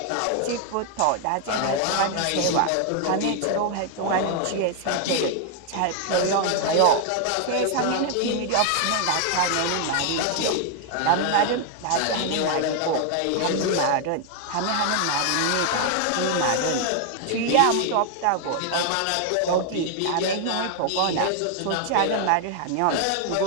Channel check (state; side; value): different; both; correlation 0.00